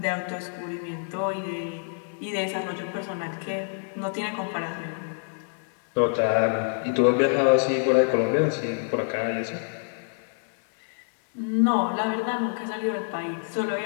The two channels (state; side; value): silent; right; digital silence